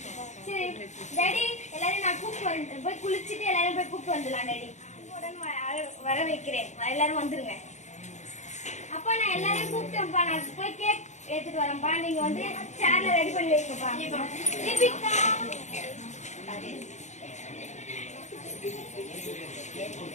you, ma. சரி daddy எல்லாரும் நான் கூப்பிட்டு வரேன். போய் குளிச்சிட்டு எல்லாரும் போய் கூப்பிட்டு வந்துடலாம் டாடி. வர வைக்கிறேன். எல்லாரும் வந்துருங்க. அப்பா நான் எல்லாரையும் கூப்பிட்டேன்ப்பா. நான் போய் கேக் எடுத்துட்டு வரேன்ப்பா. நீங்க வந்து சேர்ல ரெடி பண்ணி வைங்கப்பா. தீபிகா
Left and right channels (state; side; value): late; right; 0.34 ms